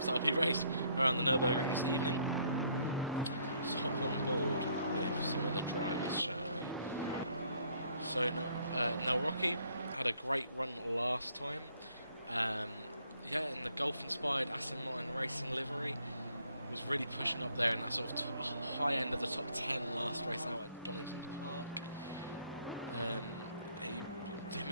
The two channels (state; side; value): inverted; both; correlation -0.67